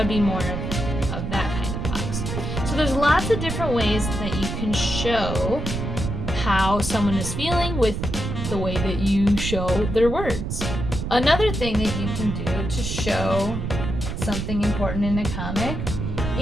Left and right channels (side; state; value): right; noise; rumble, 4 dB below the sound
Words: be more of that kind of box. So there's lots of different ways that you can show how someone is feeling with the way that you show their words. Another thing that you can do to show something important in a comic